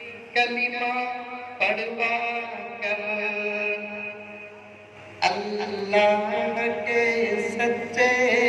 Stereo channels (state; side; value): identical; both; correlation 1.00